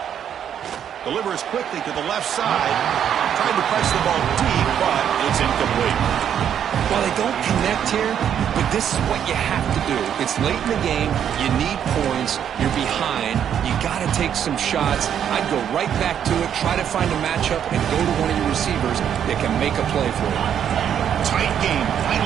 Delivers quickly to the left side. Tried to press the ball deep, but it's incomplete. Well, they don't connect here, but this is what you have to do. It's late in the game. You need points. You're behind. You got to take some shots. I'd go right back to it, try to find a matchup, and go to one of your receivers that can make a play for you. Tight game.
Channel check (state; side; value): quieter; left; 9.1 dB